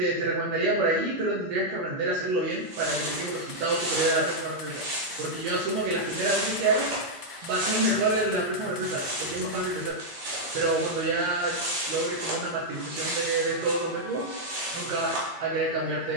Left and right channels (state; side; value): late; left; 8.6 ms